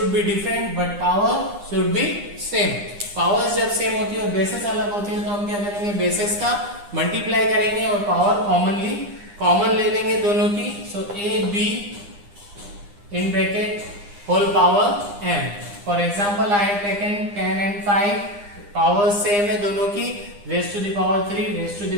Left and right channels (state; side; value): late; left; 9.9 ms